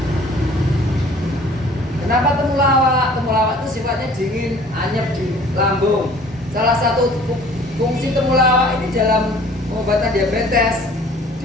Kenapa temulawak? Temulawak itu sifatnya dingin, anyep di lambung. Salah satu fungsi temulawak ini dalam pengobatan diabetes,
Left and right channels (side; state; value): both; normal; correlation 0.51